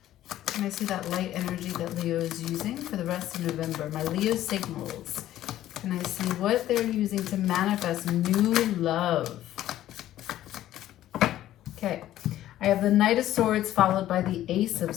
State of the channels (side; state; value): right; quieter; 13.3 dB